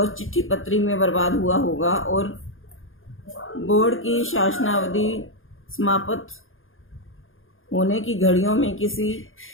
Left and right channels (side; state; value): right; late; 0.59 ms